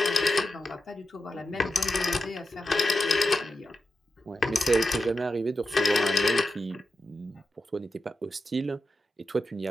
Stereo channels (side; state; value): both; normal; correlation 0.89